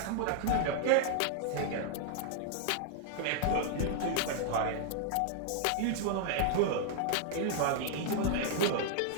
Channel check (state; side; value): different; both; correlation -0.01